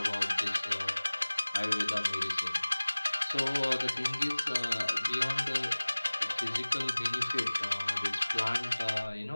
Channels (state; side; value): inverted; both; correlation -1.00